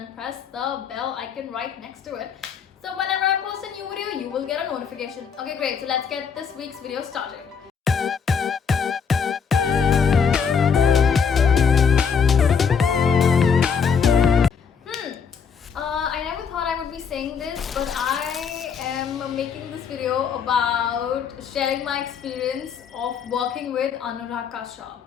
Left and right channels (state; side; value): quieter; right; 6.4 dB